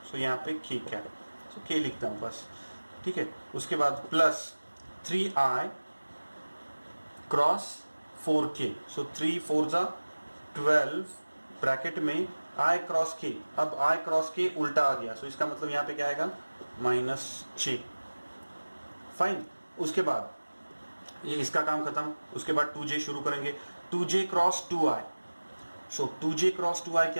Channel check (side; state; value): both; inverted; correlation -1.00